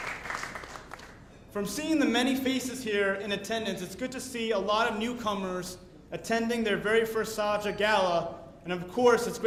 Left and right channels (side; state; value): both; identical; correlation 1.00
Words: From seeing the many faces here in attendance, it's good to see a lot of newcomers attending their very first SAJA Gala, and of course, it's